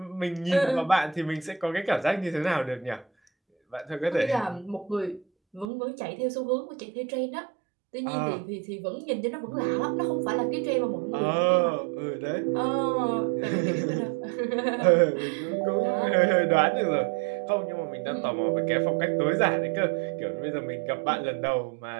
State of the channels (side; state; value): left; drops out; at 5.7 s